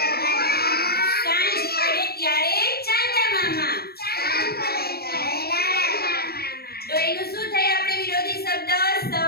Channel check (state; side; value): late; right; 0.46 ms